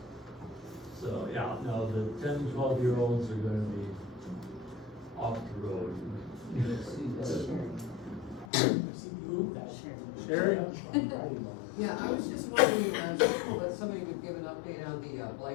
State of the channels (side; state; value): right; drops out; at 8.5 s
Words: So, yeah, no, the 10, 12-year-olds are gonna be off the road. Sherry? Yeah, I was just wondering, that somebody would give an update on the